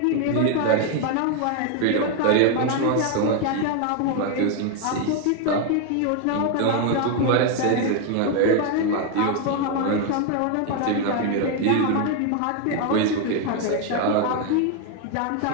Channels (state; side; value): different; both; correlation 0.01